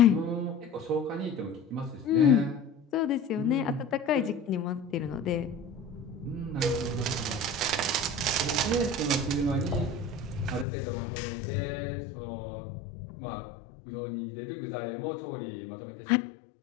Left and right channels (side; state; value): right; drops out; at 10.7 s